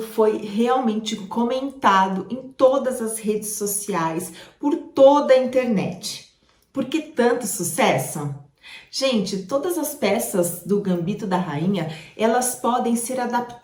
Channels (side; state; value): both; identical; correlation 1.00